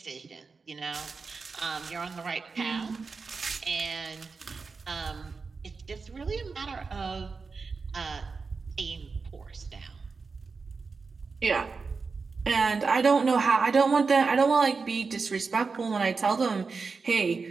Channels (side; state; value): left; quieter; 4.6 dB